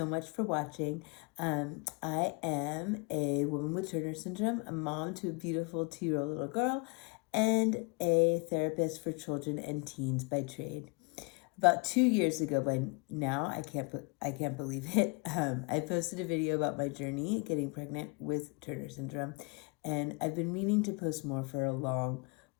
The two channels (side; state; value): right; quieter; 30.2 dB